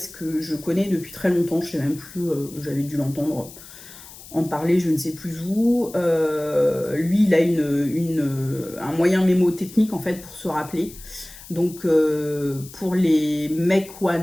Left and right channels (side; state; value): left; noise; hiss, 18 dB below the sound